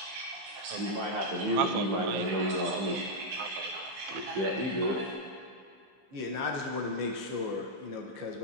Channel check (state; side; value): late; left; 15 ms